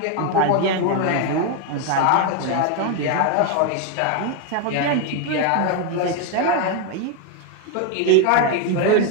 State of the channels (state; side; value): different; both; correlation 0.01